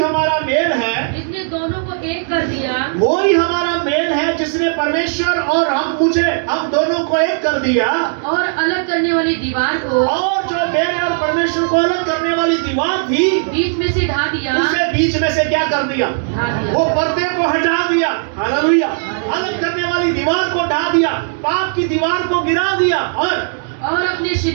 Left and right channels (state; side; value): silent; left; digital silence